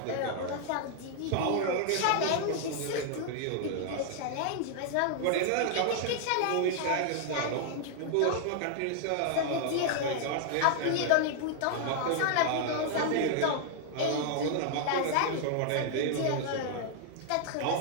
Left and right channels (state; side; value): different; both; correlation 0.00